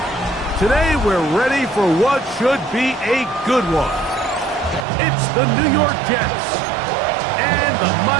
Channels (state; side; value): drops out; left; at 4.9 s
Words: Today, we're ready for what should be a good one. It's the New York Jets and the